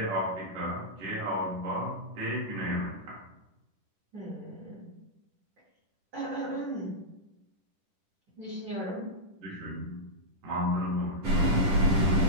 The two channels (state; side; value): late; left; 10 ms